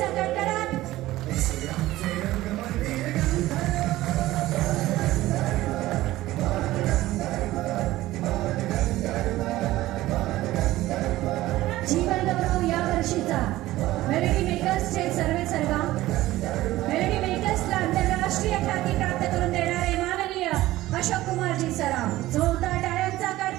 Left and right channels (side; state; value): left; quieter; 16.5 dB